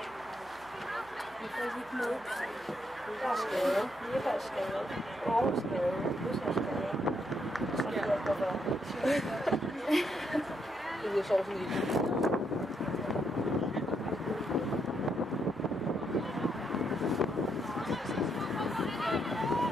Vi får ikke med. Der er skade. Jeppe er skade. Aarhus er skade. Løs er skade. Så det er godt være. Det er så sådan lidt.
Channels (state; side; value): noise; right; hum, 26 dB below the sound